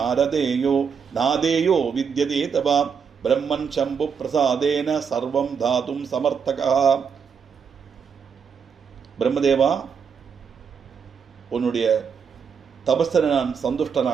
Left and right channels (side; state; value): left; quieter; 6.5 dB